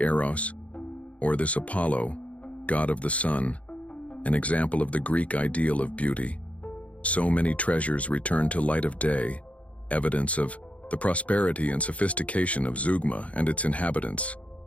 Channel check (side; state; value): right; late; 0.065 ms